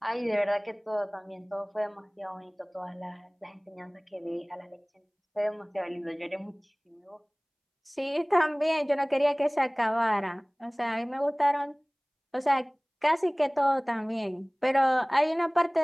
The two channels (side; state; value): both; identical; correlation 1.00